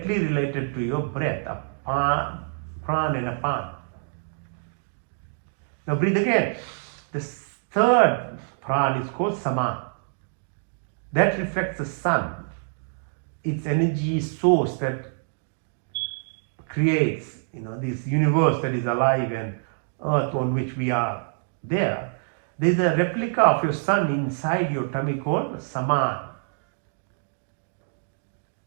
related to your breath, prana and apana. Now breathe again. The third prana is called sama. That reflects the sun, its energy source that creates, this universe that is alive and earth on which we are there. There is a replica of your sun inside your tummy called Saman,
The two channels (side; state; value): left; silent; digital silence